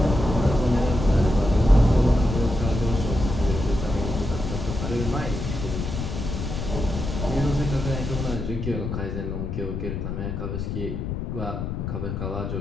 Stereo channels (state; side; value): noise; left; rumble, 4 dB below the sound